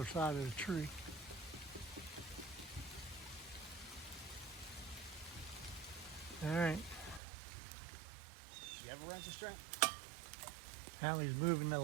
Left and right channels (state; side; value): drops out; left; at 7.2 s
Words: side of the tree. All right. You have a ratchet strap? Hallie's moving the